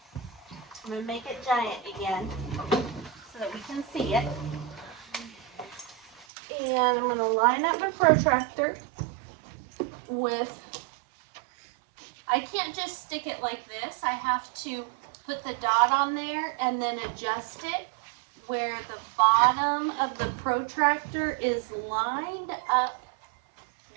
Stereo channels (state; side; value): drops out; left; at 6.2 s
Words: I'm gonna make it giant again so that we can see it. And I'm going to line up my protractor with, I can't just stick it like this. I have to put the dot on there and then adjust it where the bottom of the protractor is lined up